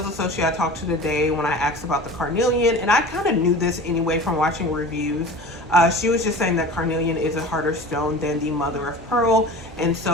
associate I talked to today, when I asked about the carnelian, and I kind of knew this anyway from watching reviews, she was just saying that carnelian is a harder stone than the mother of pearl. And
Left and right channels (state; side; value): normal; both; correlation 0.37